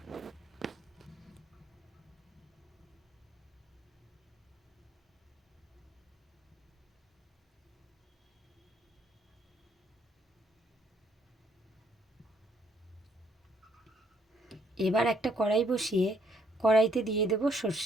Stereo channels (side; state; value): both; normal; correlation 0.68